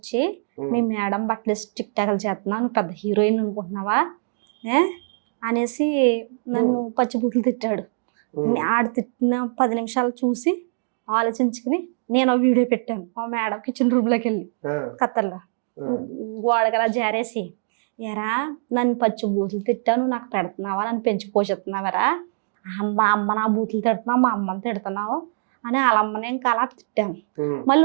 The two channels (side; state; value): left; silent; digital silence